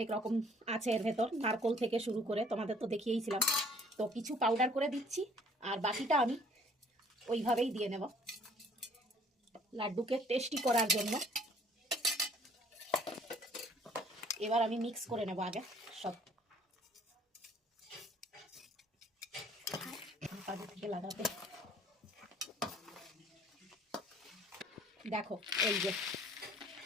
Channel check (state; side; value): normal; both; correlation 0.58